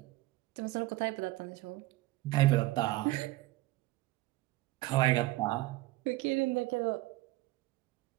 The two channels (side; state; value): left; quieter; 18.7 dB